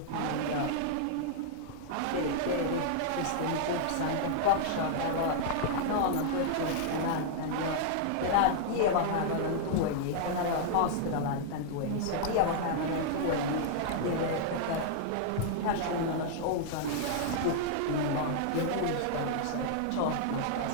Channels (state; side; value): different; both; correlation -0.01